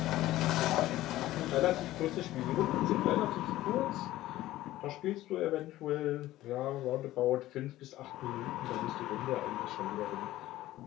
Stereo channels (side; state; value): right; quieter; 15.5 dB